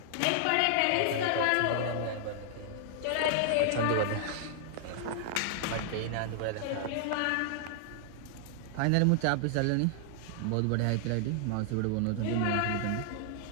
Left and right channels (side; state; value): both; different; correlation -0.01